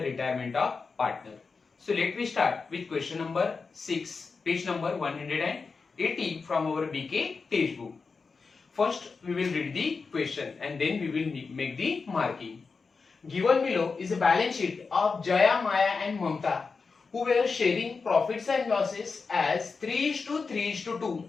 retirement of partner. So let me start with question number 6, page number 180 from our BK textbook. First we will read the question and then we will make the marking. Given below is a balance sheet of Jaya, Maya and Mamta who were sharing profits and losses as 3:3:2.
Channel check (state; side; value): quieter; right; 4.7 dB